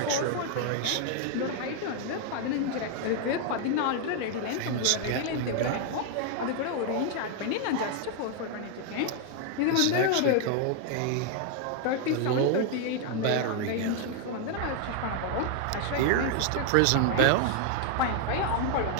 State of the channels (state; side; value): different; both; correlation 0.00